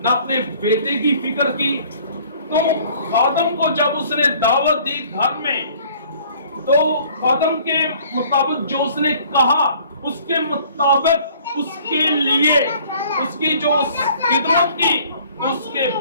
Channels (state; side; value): inverted; both; correlation -0.54